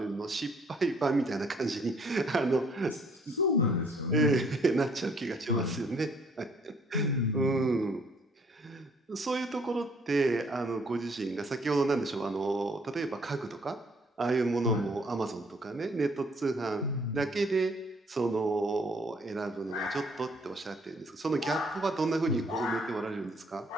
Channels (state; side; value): normal; both; correlation 0.63